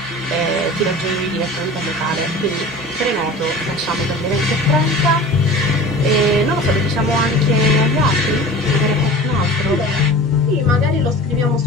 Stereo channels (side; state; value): both; normal; correlation 0.38